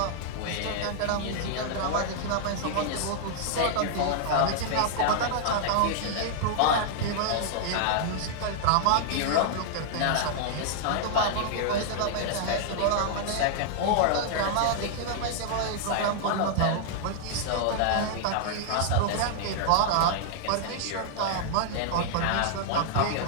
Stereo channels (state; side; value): different; both; correlation -0.01